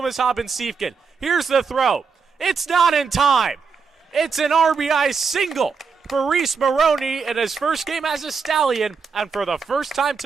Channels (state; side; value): quieter; left; 5.4 dB